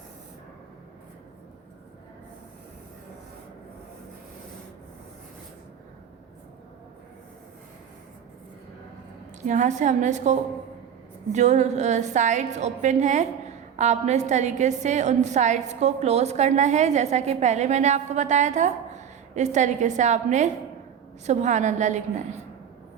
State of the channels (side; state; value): left; quieter; 8.4 dB